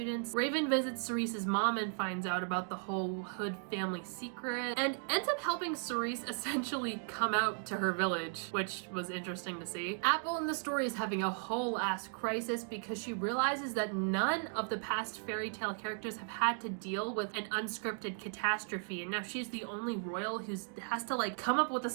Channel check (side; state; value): left; silent; 54 dB below the other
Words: Raven visits Cerise's mom and finds out about the whole Hood family secret and ends up helping Cerise essentially come out to her village, which was interesting to see. Apple in the story is having a whole ass crisis because she realizes that none of the past fairy tale characters have had to deal with an unscripted catastrophe, and now she's the only royal who has to like come up with a